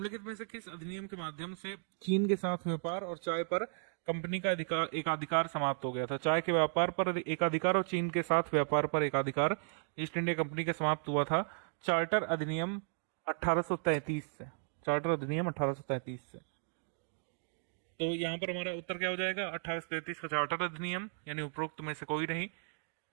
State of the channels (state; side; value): silent; left; digital silence